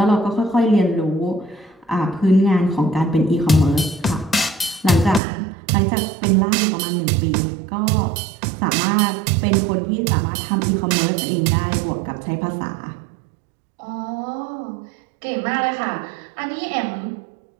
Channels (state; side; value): drops out; left; at 5.2 s